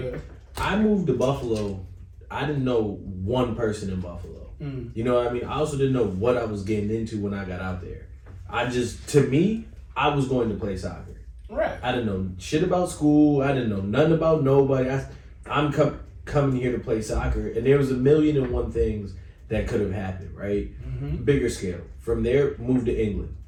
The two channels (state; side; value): identical; both; correlation 1.00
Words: Yeah. I moved to Buffalo. I didn't know one person in Buffalo. You know what I mean? I also didn't know what I was getting into when I got out there. I was going to play soccer. Right. I didn't know shit about school. I didn't know nothing about nobody. I'm coming here to play soccer, and there was 1,000,001 things that could have happened, right? Mm-hmm. Bigger scale. From there, moved to England.